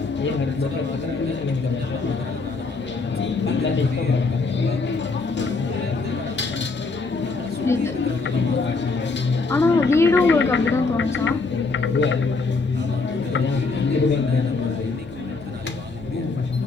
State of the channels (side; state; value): right; quieter; 4.0 dB